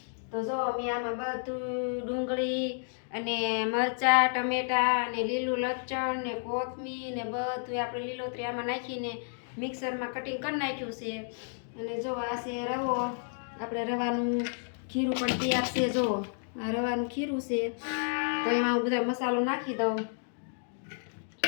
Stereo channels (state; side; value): silent; right; digital silence